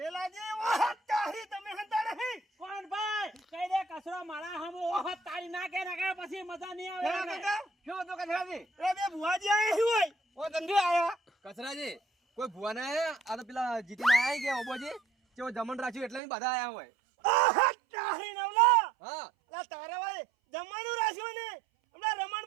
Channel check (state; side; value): drops out; left; at 16.2 s